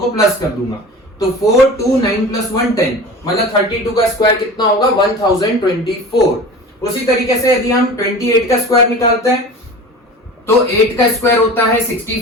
प्लस कर दूंगा। तो 4 2 9 प्लस 1 10, मतलब 32 का स्क्वायर कितना होगा 1024। उसी तरीके से यदि हम 28 का स्क्वायर निकालते हैं तो 8 का स्क्वायर होता है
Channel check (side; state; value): both; normal; correlation 0.36